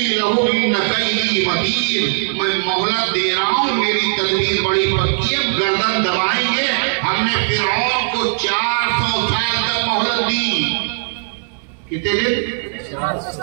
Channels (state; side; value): silent; left; digital silence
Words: लहू इन कई मतीन, मैं मोहलत दे रहा हूं, मेरी तदबीर बड़ी पक्की है, गर्दन दबाएंगे। हमने फिरौन को 400 साल तक मोहलत दी। कितने दिन? 400